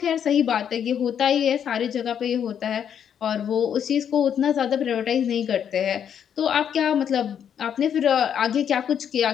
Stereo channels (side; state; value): right; quieter; 8.6 dB